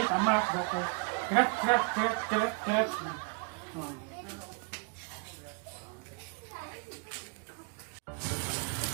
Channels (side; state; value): left; quieter; 35.2 dB